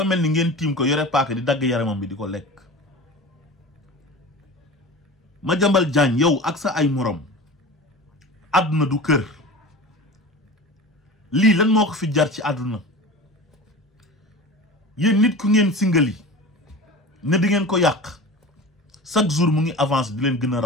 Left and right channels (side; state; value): both; normal; correlation 0.34